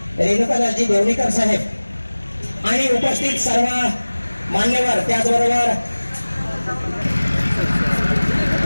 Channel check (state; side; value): inverted; both; correlation -1.00